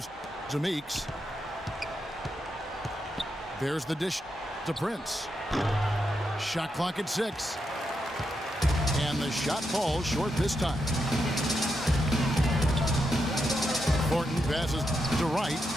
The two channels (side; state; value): both; normal; correlation 0.84